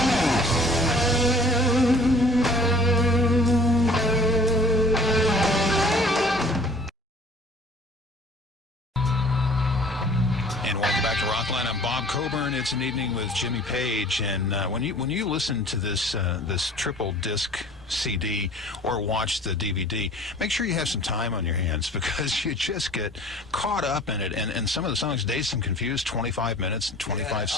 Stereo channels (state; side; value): normal; both; correlation 0.49